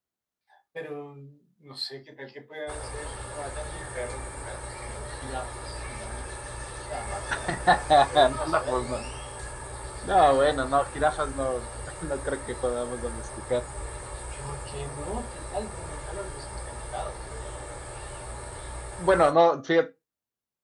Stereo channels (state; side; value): identical; both; correlation 1.00